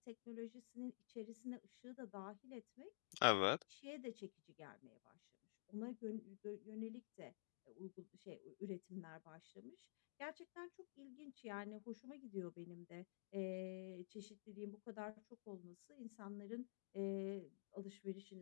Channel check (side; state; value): right; silent; digital silence